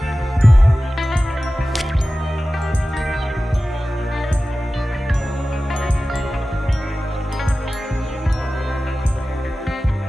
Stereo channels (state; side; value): normal; both; correlation 0.95